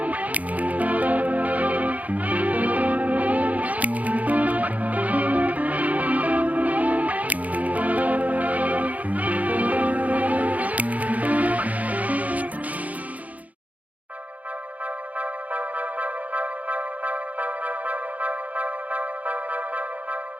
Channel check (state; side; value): late; left; 0.073 ms